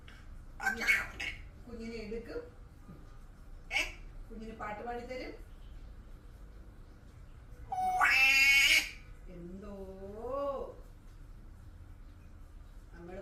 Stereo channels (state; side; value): identical; both; correlation 1.00